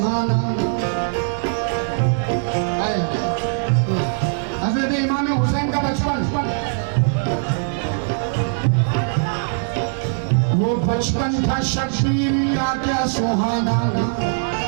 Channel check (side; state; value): left; silent; digital silence